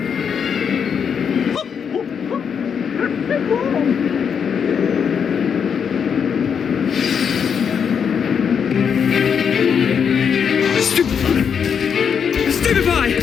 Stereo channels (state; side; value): quieter; right; 7.1 dB